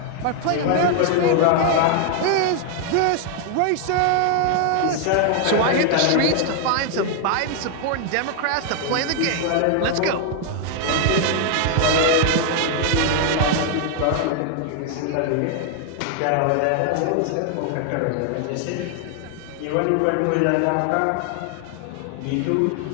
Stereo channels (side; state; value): both; different; correlation 0.00